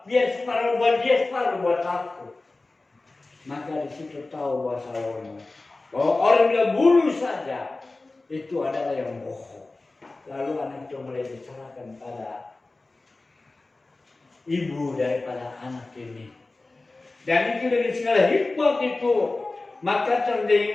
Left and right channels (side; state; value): right; quieter; 3.3 dB